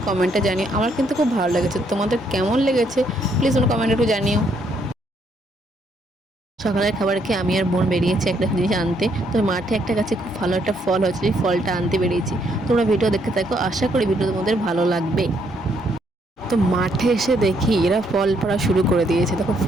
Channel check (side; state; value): both; normal; correlation 0.72